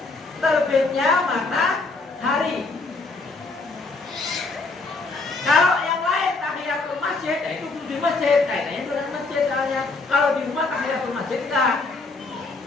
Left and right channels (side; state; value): right; quieter; 3.6 dB